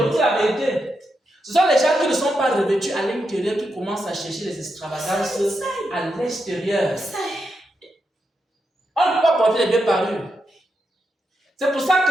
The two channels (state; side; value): normal; both; correlation 0.85